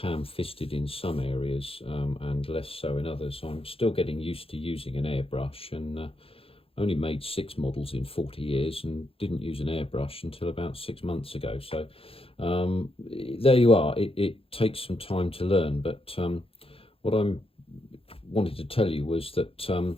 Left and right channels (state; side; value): late; right; 0.27 ms